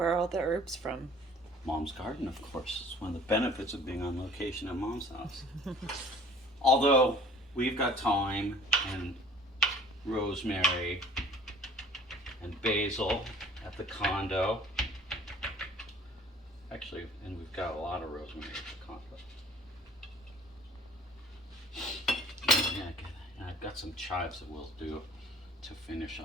are all the herbs from? Mom's garden, of course. It's one of the benefits of being on location at Mom's house. Although we've got thyme and rosemary and basil at the condo. Actually, and we've got a lot of rosemary at the condo. Yeah, and I've got some chives that we'll do to finish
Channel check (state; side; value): normal; both; correlation 0.51